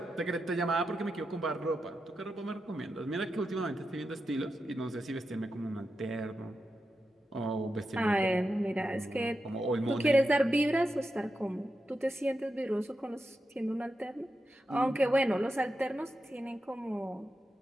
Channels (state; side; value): normal; both; correlation 0.88